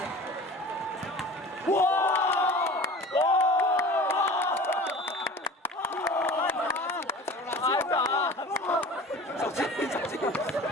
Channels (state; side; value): normal; both; correlation 0.40